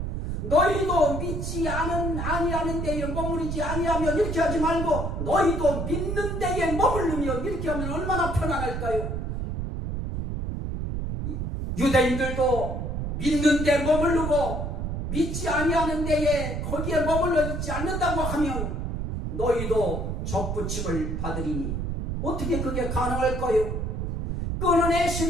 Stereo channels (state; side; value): noise; right; rumble, 3 dB below the sound